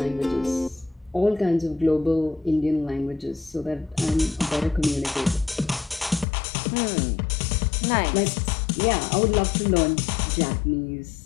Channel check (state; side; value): drops out; right; at 6.2 s